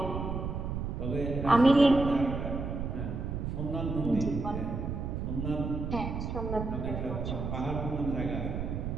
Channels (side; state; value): right; noise; rumble, 3 dB below the sound